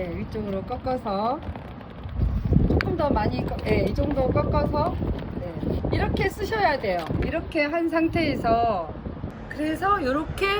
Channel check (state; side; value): identical; both; correlation 1.00